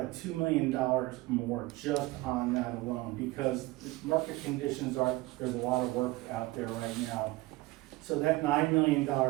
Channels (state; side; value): quieter; left; 20.2 dB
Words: $2 million more just on that alone, because market conditions are, there's a lot of work out there right now. So that $9 million